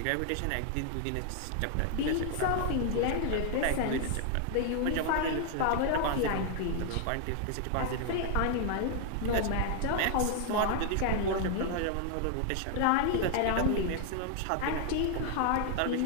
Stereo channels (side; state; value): both; different; correlation 0.00